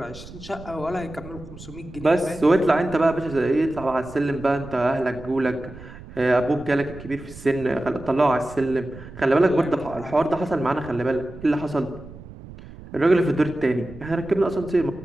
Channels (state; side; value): noise; right; rumble, 16 dB below the sound